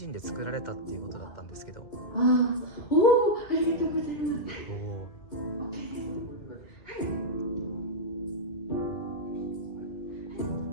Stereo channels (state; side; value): late; right; 2.2 ms